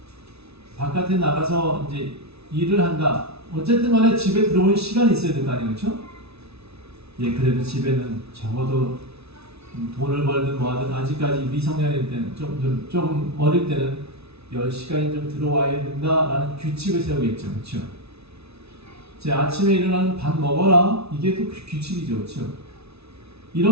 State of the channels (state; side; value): late; left; 0.79 ms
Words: 바깥에 나가서 이제 일을 한다. 어쨌든 간에 집에 들어오는 시간이 있어야 될 거 아니에요, 그렇죠? 그래도 집에는 적어도 돈을 벌든 뭐하든 아직까지 미성년일 때는 조금 어릴 때는 10시간이 좀 들어와야 된다라는 규칙을 세우겠죠, 그렇죠? 제 아침에 일어나는 밥 먹어라, 이게 또 규칙이죠, 그렇죠?